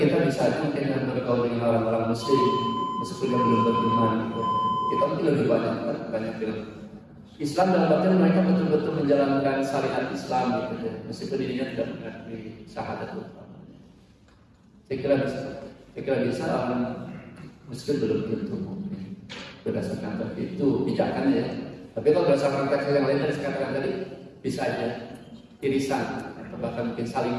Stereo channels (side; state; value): both; identical; correlation 1.00